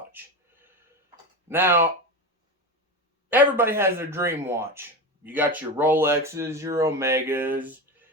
Now, everybody has their dream watch. You got your Rolexes, your Omegas.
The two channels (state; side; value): normal; both; correlation 0.22